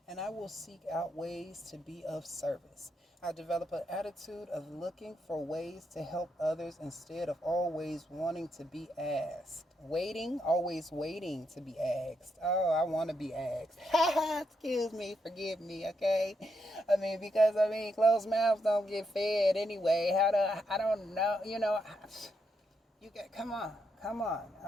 and I will seek out ways to be of service. I develop an attitude of looking for ways to help others instead of always wanting to be asked. Always waiting to be asked. Oh, I want to be asked. Excuse me, forgive me, okay? Because closed mouths don't get fed anyway. I don't know, you got, come on,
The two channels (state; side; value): normal; both; correlation 0.80